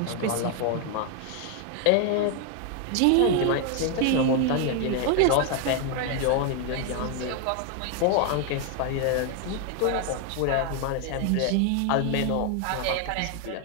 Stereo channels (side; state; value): both; different; correlation 0.00